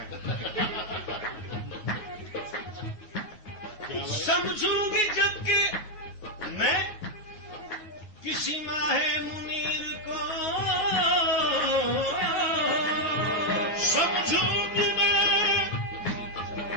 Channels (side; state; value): right; late; 9.4 ms